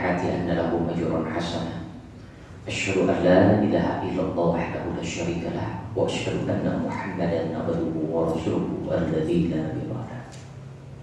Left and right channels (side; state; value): both; identical; correlation 1.00